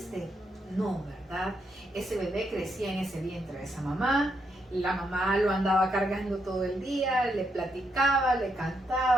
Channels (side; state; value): both; normal; correlation 0.79